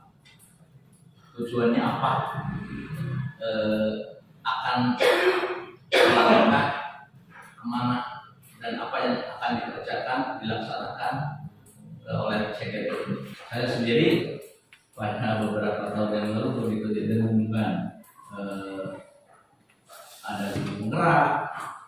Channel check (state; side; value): identical; both; correlation 1.00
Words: Tujuannya apa? Akan melangkah kemana dan apa yang akan dikerjakan, dilaksanakan oleh CGP itu. Saya sendiri pada beberapa tahun yang lalu begitu didengungkan ada guru penggerak,